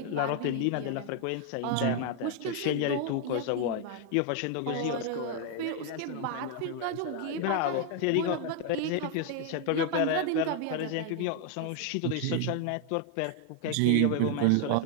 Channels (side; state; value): both; different; correlation 0.00